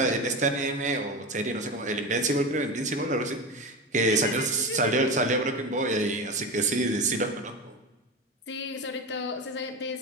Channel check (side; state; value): both; normal; correlation 0.24